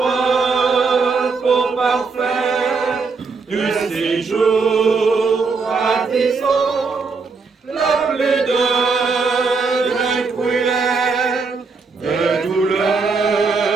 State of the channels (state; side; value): quieter; left; 4.6 dB